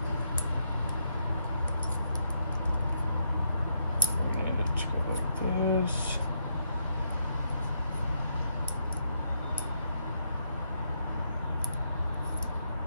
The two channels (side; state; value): both; inverted; correlation -0.77